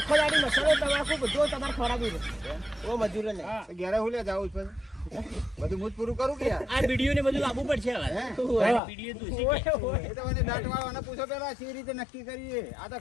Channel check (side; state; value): right; drops out; at 8.8 s